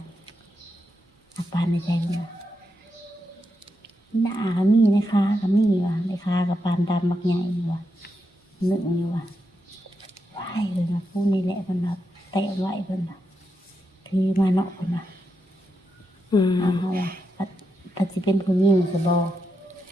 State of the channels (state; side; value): normal; both; correlation 0.85